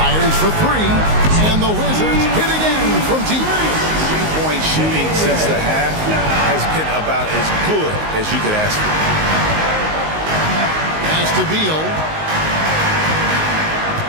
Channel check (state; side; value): late; left; 19 ms